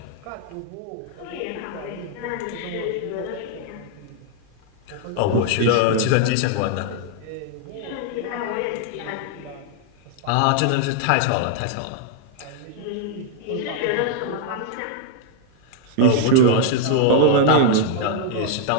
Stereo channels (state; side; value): different; both; correlation 0.00